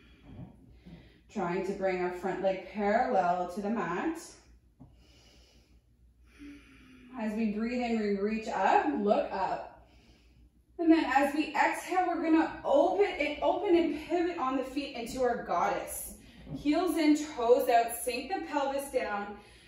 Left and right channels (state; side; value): identical; both; correlation 1.00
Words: Trying to bring our front leg parallel to the mat. As we breathe in, we reach up, look up. And then as we exhale, we're gonna open and pivot on the feet into our goddess. Heels in, toes out, sink the pelvis down.